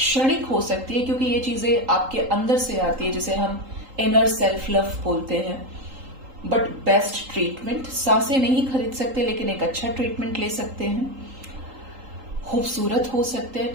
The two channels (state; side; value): late; left; 3.8 ms